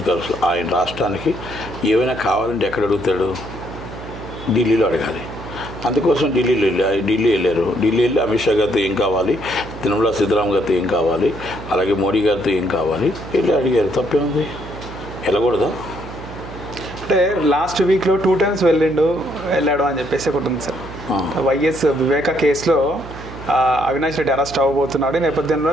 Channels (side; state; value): right; noise; hum, 13 dB below the sound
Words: ఖర్చులు, ఆయన రాష్ట్రానికి ఏమైనా కావాలంటే ఎక్కడ అడుగుతాడు? ఢిల్లీలో అడగాలి. అందుకోసం ఢిల్లీ వెళ్ళారు. ఢిల్లీ వెళ్ళి అమిత్ షా గారితో ఏం కావాలి, నిర్మలా సీతారామన్ గారితో ఏం కావాలి, అలాగే మోడీ గారితో ఏం కావాలి వెళ్ళి అడిగారు. తప్పేముంది? వెళ్ళకూడదా? అంటే లాస్ట్ వీక్లో 2 times వెళ్ళాడు అని చెప్పేసి ఒకటి ఉంది సార్. వైఎస్ వివేక కేసులో అవినాష్ రెడ్డి అరెస్ట్ అవ్వబోతున్నాడు, ఈ